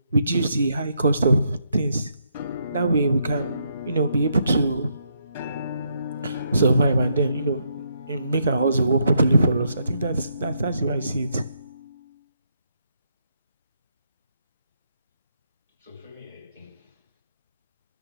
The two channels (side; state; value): both; inverted; correlation -0.76